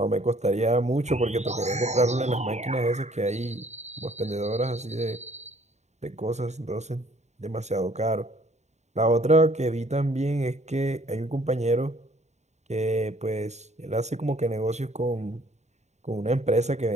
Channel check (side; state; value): left; late; 0.33 ms